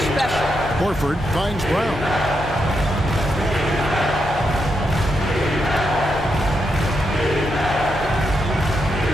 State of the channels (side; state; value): both; normal; correlation 0.82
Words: special. Horford finds Brown.